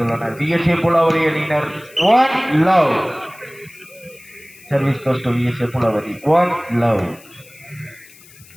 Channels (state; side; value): noise; left; hiss, 23 dB below the sound